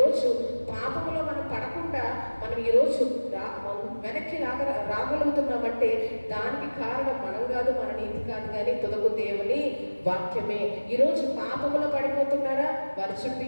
పాపములో మనం పడకుండా మనం ఈరోజు వెనక్కి రాగలుగుతున్నామంటే దానికి కారణం మనం కాదు, మన నీతి కాదు, కానీ తుదకు దేవుని వాక్యమే. ఈరోజు పాపములో పడిపోతున్నారా? వారి చుట్టూ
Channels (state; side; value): inverted; both; correlation -1.00